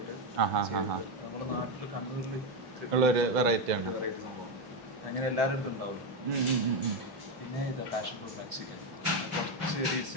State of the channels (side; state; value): both; normal; correlation 0.08